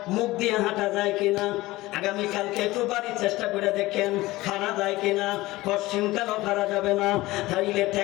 মুখ দিয়ে হাঁটা যায় কিনা। আগামীকালকে একটু বাড়ির চেষ্টা করে দেখেন হারা যায় কিনা। পশ্চিমকালও হারা যাবে না, তাইলে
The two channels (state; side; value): quieter; right; 18.8 dB